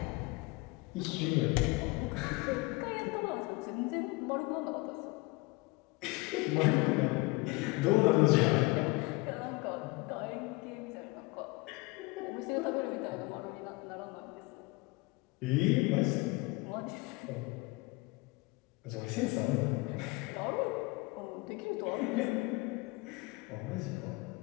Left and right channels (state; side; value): quieter; right; 24.6 dB